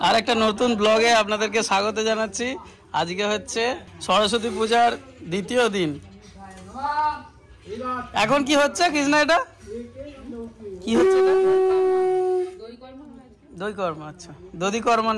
আর একটা নতুন ব্লগে আপনাদেরকে স্বাগত জানাচ্ছি। আজকে হচ্ছে সরস্বতী পূজার দ্বিতীয় দিন। এখন কি হচ্ছে কৃষ্ণা? এটা কি হচ্ছে? দই কর্ম। আচ্ছা, দধি কর্ম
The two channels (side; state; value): both; identical; correlation 1.00